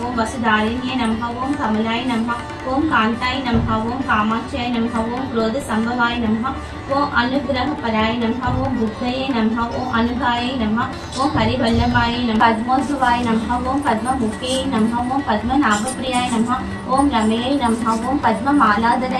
ఓం వసుధారిణ్యే నమః. ఓం కమలాయ నమః. ఓం కాంతాయ నమః. ఓం కామాక్షాయ నమః. ఓం క్రోధ సంభవాయ నమః. ఓం అనుగ్రహపరాయ నమః. ఓం బుద్ధయే నమః. ఓం అనుగాయ నమః. ఓం హరివల్లభాయ నమః. పద్మోద్భవాయ నమః. ఓం పద్మముఖే నమః. ఓం పద్మనాభప్రియాయ నమః. ఓం రమేయ నమః. ఓం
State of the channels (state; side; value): identical; both; correlation 1.00